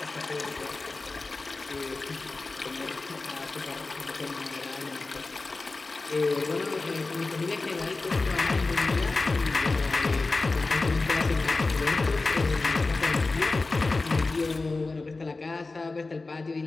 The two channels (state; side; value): quieter; right; 3.5 dB